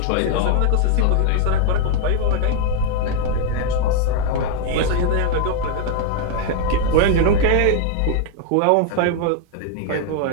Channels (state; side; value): different; both; correlation 0.00